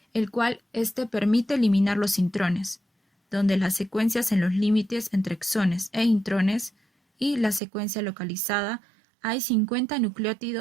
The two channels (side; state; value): left; drops out; at 7.6 s